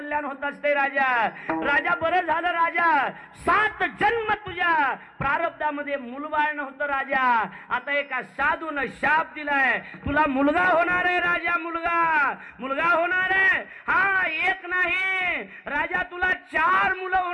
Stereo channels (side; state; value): both; identical; correlation 1.00